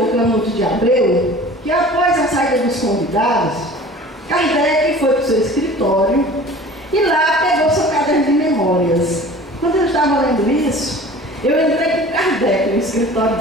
o Canuto de Abreu que após a saída dos convidados, Kardec foi para o seu escritório e lá pegou seu caderno de memórias. Quando eu estava lendo isso, eu entrei com Kardec no escritório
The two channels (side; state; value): both; normal; correlation 0.43